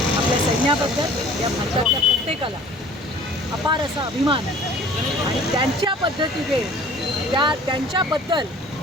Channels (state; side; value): normal; both; correlation 0.49